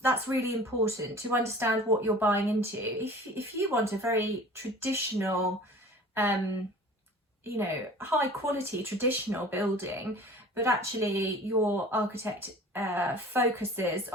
really important to understand what you're buying into. If you want a very traditional, you know, high quality traditional building, but actually your architect focuses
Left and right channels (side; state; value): both; normal; correlation 0.44